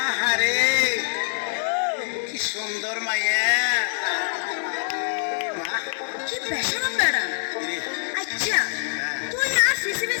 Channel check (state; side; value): silent; right; 62 dB below the other